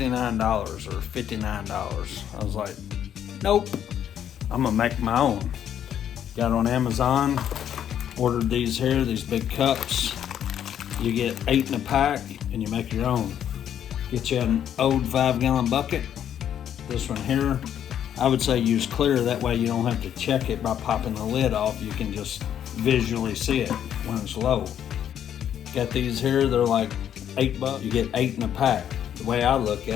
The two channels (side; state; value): right; quieter; 9.8 dB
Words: or $59. I was like, nope, I'm gonna make my own. Got on Amazon, ordered these here, these big cups. You get 8 in a pack and you make your own. Get you an old 5-gallon bucket. This one here, I would say use clear, that way you don't have to check it by popping the lid off. You can just visually see it when it's low. Got these here, they're like $8. You get 8 in a pack. The way I look